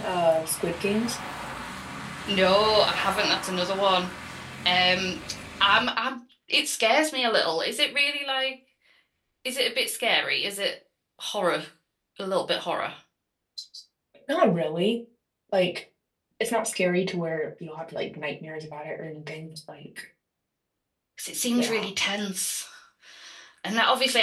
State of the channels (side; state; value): both; identical; correlation 1.00